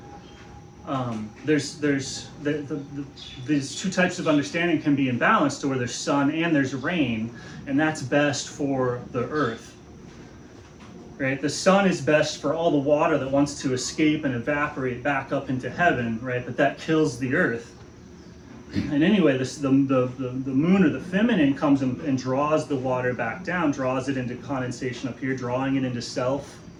these two types of understanding can be imbalanced, to where there's sun and there's rain, and that's best for the earth. Right? The sun is best for all the water that wants to escape and evaporate back up into heaven, right? But that kills the earth. And anyway, the moon, or the feminine, comes and draws the water back down, draws it into condensation up here, drawing it into self.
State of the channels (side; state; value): both; identical; correlation 1.00